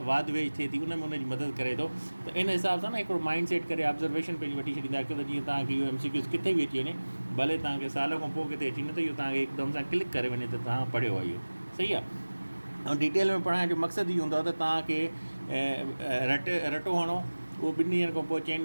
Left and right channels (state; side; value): inverted; both; correlation -1.00